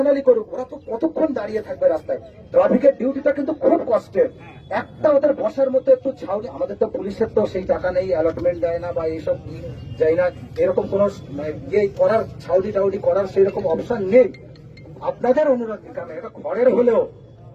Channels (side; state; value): both; identical; correlation 1.00